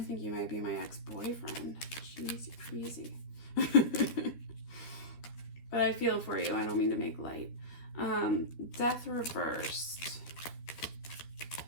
think you might be my ex-boyfriend. Jeez, you're crazy. But I feel for you. I don't mean to make light. Death reversed.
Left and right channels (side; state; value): right; late; 13 ms